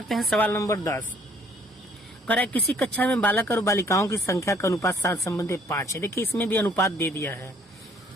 हैं। सवाल नंबर 10 कह रहा है किसी कक्षा में बालक और बालिकाओं की संख्या का अनुपात 7 संबंधी 5 है। देखिए इसमें भी अनुपात दे दिया है।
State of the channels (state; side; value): normal; both; correlation 0.61